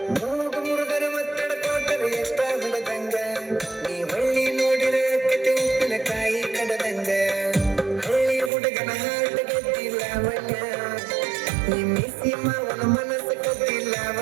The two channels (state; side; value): drops out; left; at 8.5 s